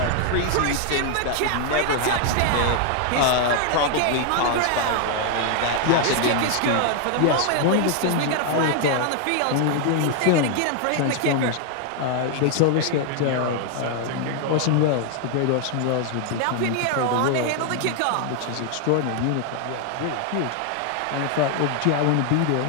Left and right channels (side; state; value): both; different; correlation 0.00